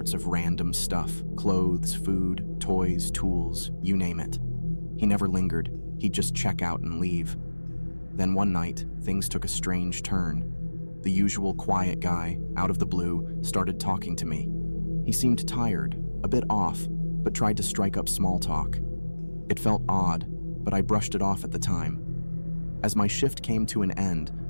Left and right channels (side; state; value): both; inverted; correlation -1.00